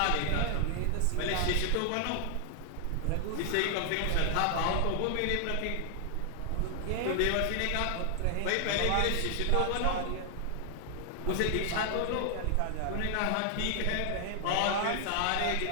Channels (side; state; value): both; different; correlation 0.00